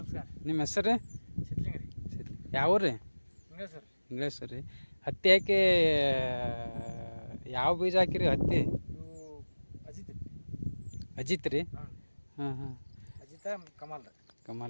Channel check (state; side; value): inverted; both; correlation -1.00